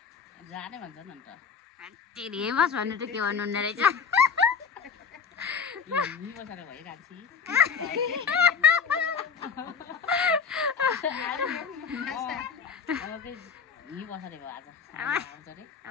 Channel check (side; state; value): right; quieter; 6.2 dB